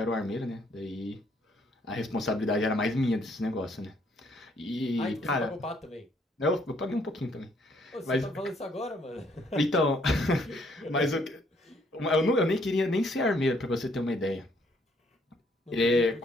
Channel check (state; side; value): normal; both; correlation 0.67